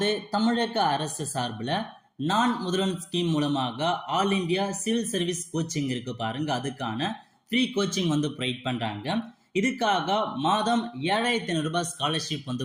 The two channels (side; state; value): both; identical; correlation 1.00